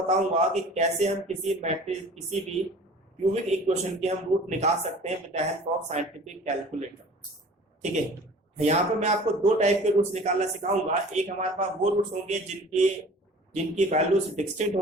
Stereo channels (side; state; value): both; normal; correlation 0.45